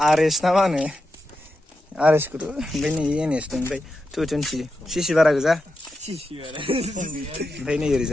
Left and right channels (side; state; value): both; normal; correlation 0.88